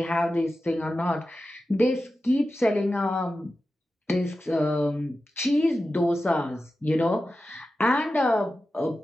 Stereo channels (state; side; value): normal; both; correlation 0.93